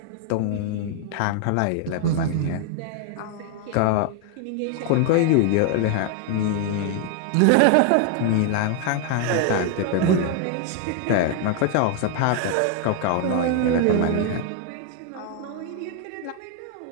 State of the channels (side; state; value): both; different; correlation 0.00